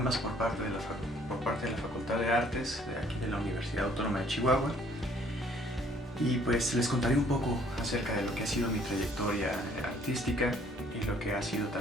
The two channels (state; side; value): normal; both; correlation 0.60